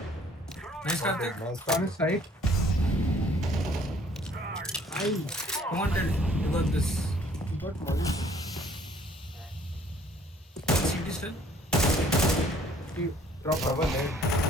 Nice, Karthik. Nice. On his side. Come on, tell. You got this. He got molly. CT still. He dropped Cover off. lane.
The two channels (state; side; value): normal; both; correlation 0.59